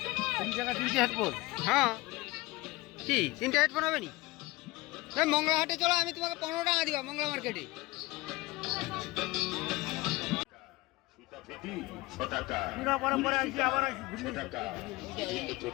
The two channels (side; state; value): right; quieter; 21.3 dB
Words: 3 টাকা 3টে হেডফোন হ্যাঁ কি 3টে হেডফোন হবে নি মংলা হাটে চলো আমি তোমাকে 15 টাকা দিবা মংলা মার্কেটে পরে আসি আবার আসি 6 টাকা বিভিন্ন